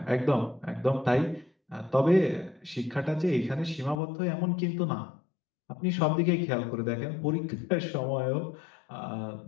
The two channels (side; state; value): right; drops out; at 4.0 s